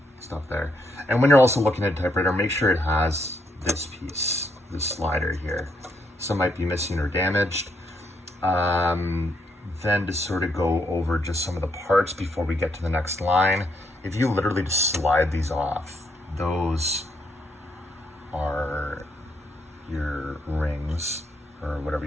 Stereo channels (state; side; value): normal; both; correlation 0.75